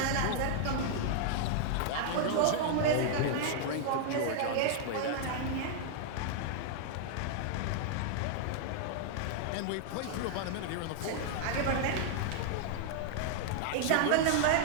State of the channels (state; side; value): different; both; correlation -0.01